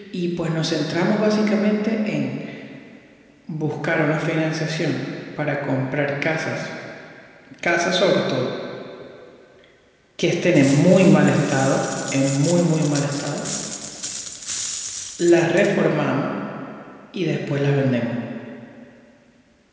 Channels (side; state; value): both; identical; correlation 1.00